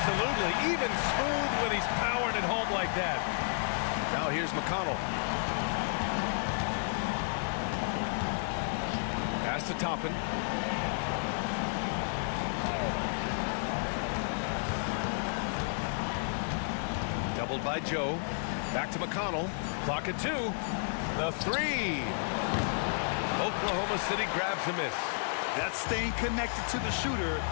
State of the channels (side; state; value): right; silent; digital silence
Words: Even smooth when he's powering it home like that. Now here's McConnell. Pass to Toppin. Doubled by Joe. Back to McConnell. Clock at 2. The 3. Oklahoma City grabs a miss. That's staying connected to the shooter